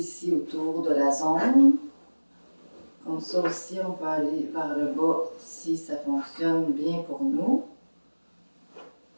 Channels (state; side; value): inverted; both; correlation -1.00